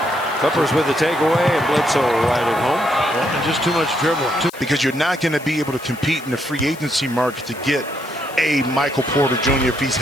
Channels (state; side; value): noise; left; hiss, 19 dB below the sound